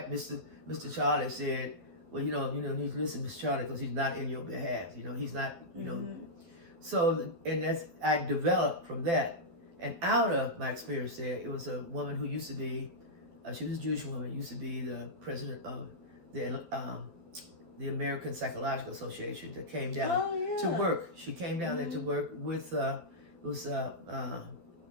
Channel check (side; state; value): left; late; 12 ms